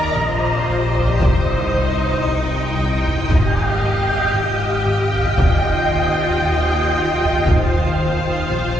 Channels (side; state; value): both; normal; correlation 0.79